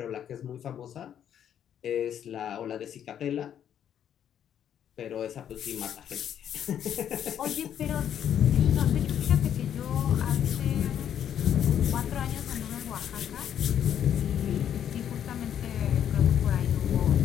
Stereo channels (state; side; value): quieter; right; 9.5 dB